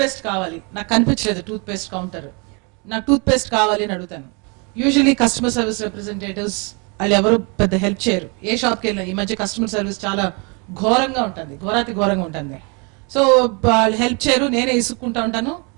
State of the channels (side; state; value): left; quieter; 32.5 dB